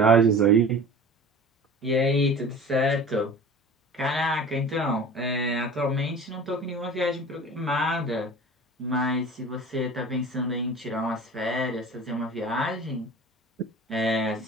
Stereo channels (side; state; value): both; normal; correlation 0.40